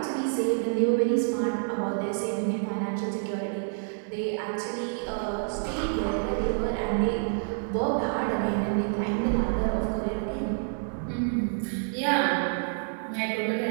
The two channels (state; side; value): silent; left; digital silence